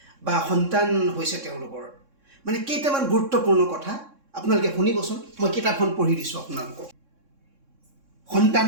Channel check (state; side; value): late; left; 3.6 ms